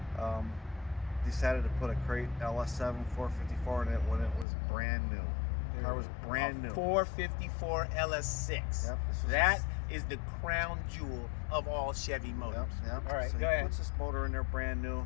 decided to put a crate LS7 454 in it when it was brand new. The car was brand new. 454 LS6. Yep, that is the crown jewel of all Chevy motors. Yep. All right, so go he ahead. puts this motor in there brand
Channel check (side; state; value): right; drops out; at 4.5 s